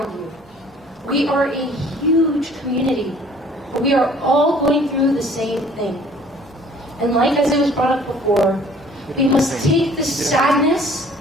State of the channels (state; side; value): normal; both; correlation 0.54